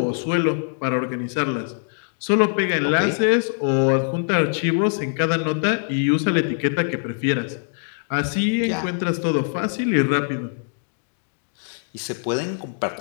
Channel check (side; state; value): right; silent; digital silence